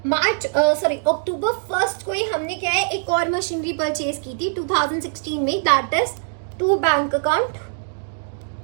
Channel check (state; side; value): silent; left; digital silence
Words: अक्टूबर 1 को ही हमने क्या है, एक और मशीनरी परचेज की थी 2016 में, that is to bank account.